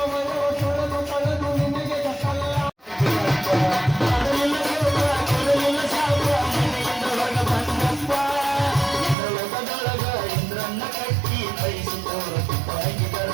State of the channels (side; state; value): left; drops out; at 9.2 s